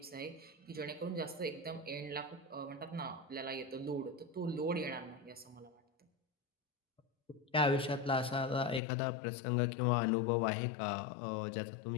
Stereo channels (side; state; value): right; drops out; at 8.8 s